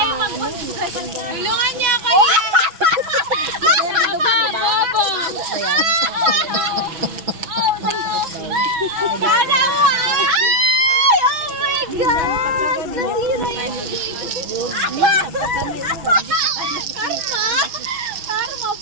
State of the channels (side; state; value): left; late; 6.1 ms